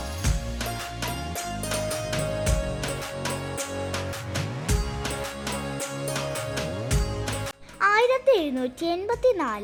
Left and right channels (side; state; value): both; identical; correlation 1.00